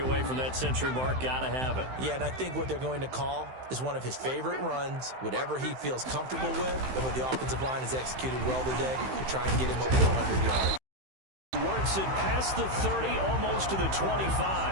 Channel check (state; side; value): late; left; 15 ms